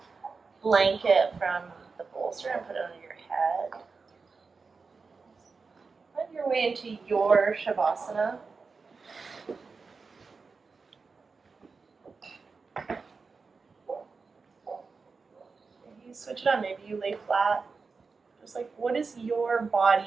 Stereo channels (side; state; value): left; quieter; 4.6 dB